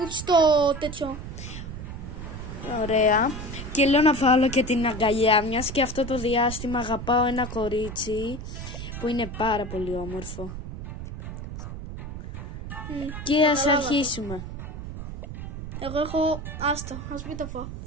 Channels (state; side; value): noise; right; rumble, 8 dB below the sound